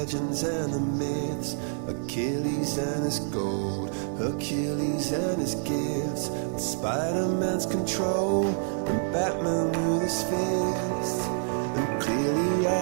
and the myths, Achilles and his gold, Hercules and his gifts, Spider-Man's control, and Batman with his fists. And clearly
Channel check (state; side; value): silent; left; 60 dB below the other